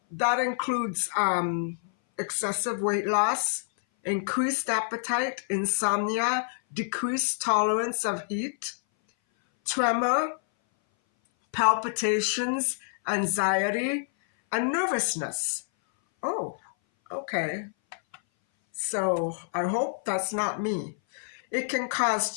that includes excessive weight loss, increased appetite, insomnia, decreased tolerance of heat, tremor, palpitations, anxiety, and nervousness. Oh, okay. So I hope that's not me. It can cause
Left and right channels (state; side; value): silent; right; 58 dB below the other